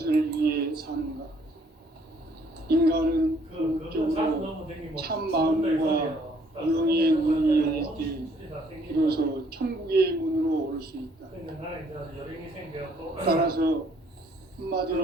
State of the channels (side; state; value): both; normal; correlation 0.64